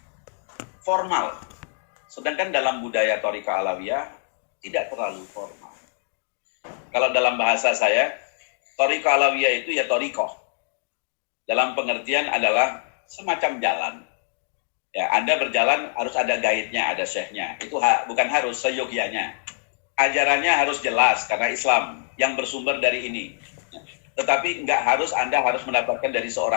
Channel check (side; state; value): right; silent; digital silence